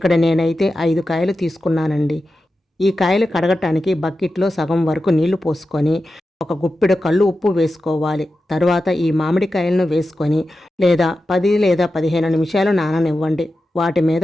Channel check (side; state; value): both; normal; correlation 0.92